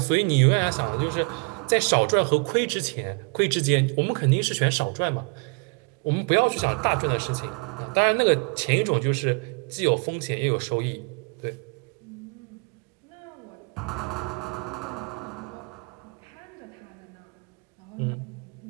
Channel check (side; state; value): left; quieter; 33.3 dB